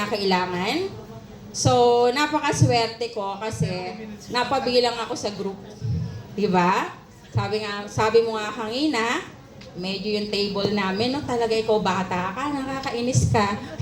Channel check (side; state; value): both; identical; correlation 1.00